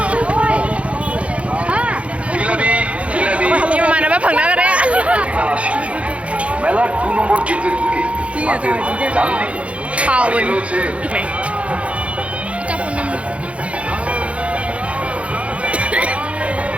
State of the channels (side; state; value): left; late; 0.062 ms